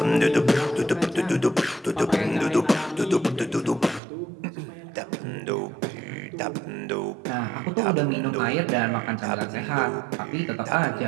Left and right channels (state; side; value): drops out; left; at 4.0 s